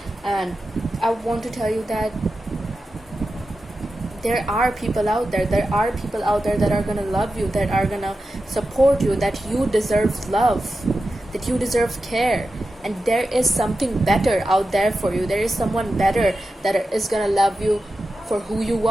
And I want to tell you that there are people out there that are gonna love you, that are gonna support you, that you deserve love, that you deserve care. And there is something better out there for you. There is someone better that is gonna love you for who you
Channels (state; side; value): normal; both; correlation 0.91